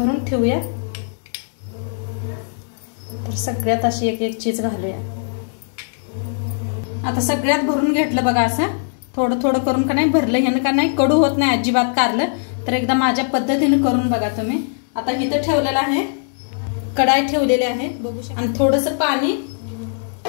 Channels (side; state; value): right; silent; digital silence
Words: ठेवूया। तर सगळ्यात अशी एक चीज घालूया। आता सगळ्यात भरून घेतलं बघा, असं थोडं करून का नाही भरलं, ह्यानं का नाही कडू होत नाही अजिबात कारलं। तर एकदा माझ्या पद्धतीने करून बघा तुम्ही। आता इथं ठेवलेलं आहे, कढाई ठेवलेली आहे बघू शकता, आणि थोडंसं पाणी